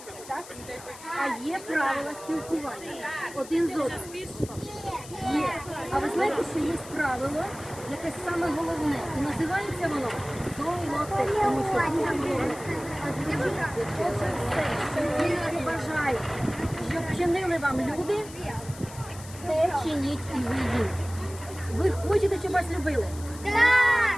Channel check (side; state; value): left; noise; hiss, 17 dB below the sound